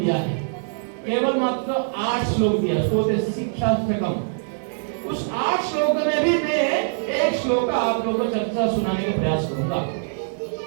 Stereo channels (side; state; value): left; silent; digital silence